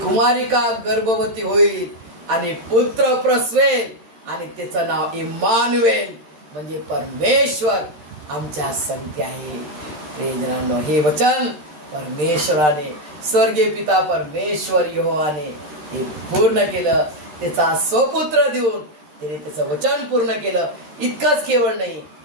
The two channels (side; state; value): left; late; 13 ms